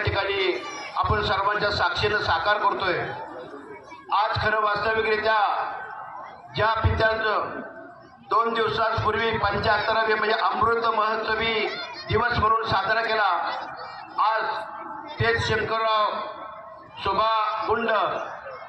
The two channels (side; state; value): both; identical; correlation 1.00